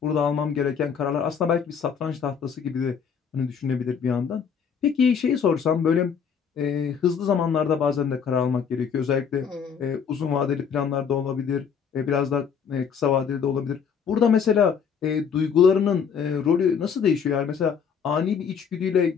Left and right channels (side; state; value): right; quieter; 6.9 dB